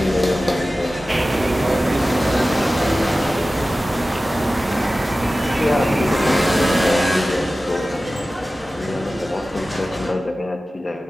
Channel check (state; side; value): normal; both; correlation 0.96